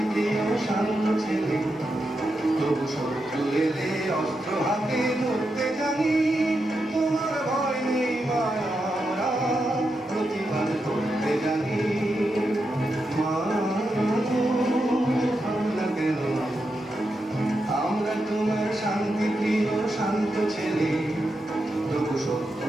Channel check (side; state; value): both; normal; correlation 0.86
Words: শান্ত ছেলে, তবু শত্রু এলে অস্ত্র হাতে ধরতে জানি। তোমার ভয় নেই মায়া, আমরা প্রতিবাদ করতে জানি। মা গো, ভাবনা কেন? আমরা তোমার শান্তিপ্রিয় শান্ত ছেলে, তবু